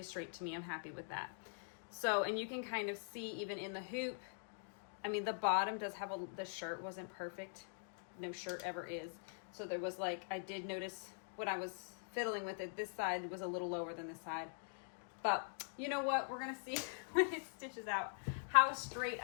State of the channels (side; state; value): right; silent; digital silence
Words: straight to me. I'm happy with that. So, and you can kind of see even in the hoop, I mean, the bottom does have the shirt wasn't perfect. No shirt ever is. So there was like, I did notice when I was fiddling with it, this side was a little lower than this side. But you know what? We're going to see when it stitches out how straight